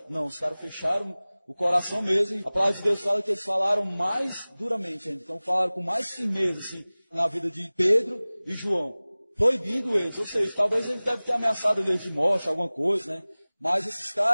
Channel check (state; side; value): inverted; both; correlation -0.99